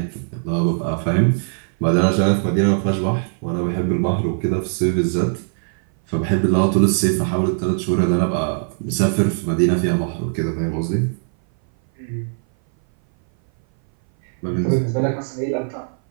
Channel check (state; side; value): silent; left; 59 dB below the other